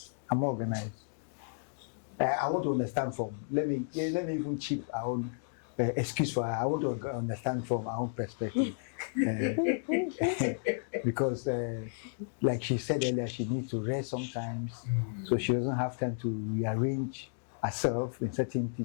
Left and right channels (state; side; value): silent; right; digital silence